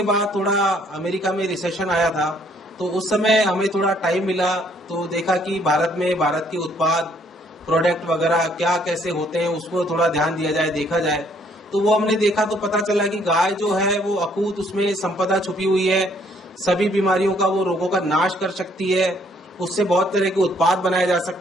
बाद थोड़ा अमेरिका में रिसेशन आया था, तो उस समय हमें थोड़ा टाइम मिला, तो देखा कि भारत में भारत के उत्पाद प्रोडक्ट वगैरह क्या कैसे होते हैं उसको थोड़ा ध्यान दिया जाए, देखा जाए। तो वो हमने देखा तो पता चला कि गाय जो है वो अकूत उसमें संपदा छुपी हुई है, सभी बीमारियों का वो रोगों का नाश कर सकती है, उससे बहुत तरह के उत्पाद बनाए जा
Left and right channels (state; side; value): normal; both; correlation 0.65